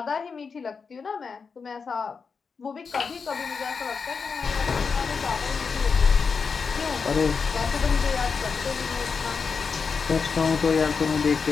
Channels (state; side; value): quieter; right; 5.4 dB